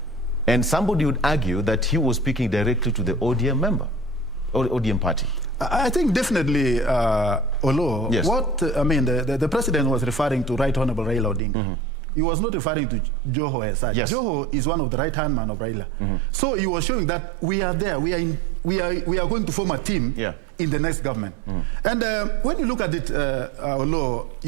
And somebody would argue that he was speaking directly to the ODM member, or ODM party. I think definitely, Olo, the president was referring to Right Honorable Raila Odinga. He was not referring to Joho as such. Joho is one of the right-hand man of Raila. So he was showing that we are there. We are going to form a team in the next government. And when you look at it, Olo,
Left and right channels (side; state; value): left; drops out; at 11.4 s